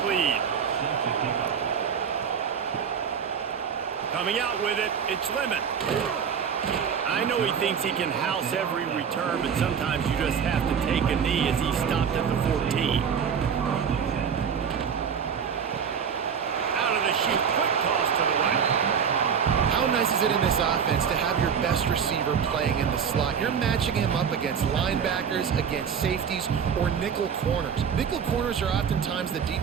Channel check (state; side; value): quieter; left; 7.2 dB